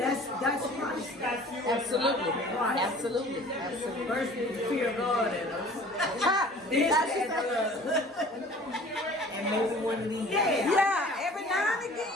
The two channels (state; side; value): normal; both; correlation 0.47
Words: that's Christ. Absolutely. Right. Absolutely. First, we fear God in us. And maybe one of these. Yeah, every now and